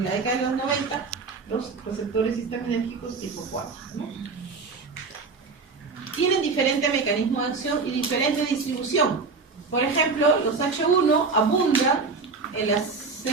la década de los 90, los receptores histaminérgicos tipo 4, ¿no? Tienen diferente mecanismo de acción y diferente distribución. Por ejemplo, los H1 abundan en las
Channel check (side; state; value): left; quieter; 4.4 dB